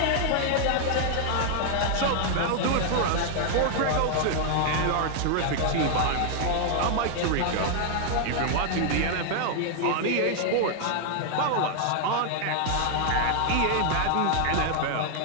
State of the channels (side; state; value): both; different; correlation 0.00